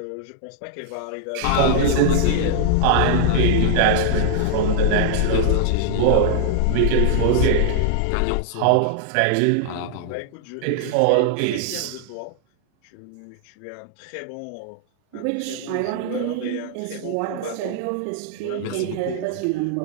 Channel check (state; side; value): different; both; correlation -0.01